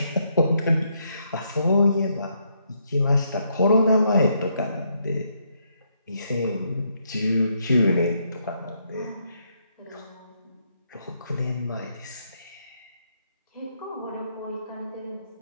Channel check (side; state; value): both; inverted; correlation -0.75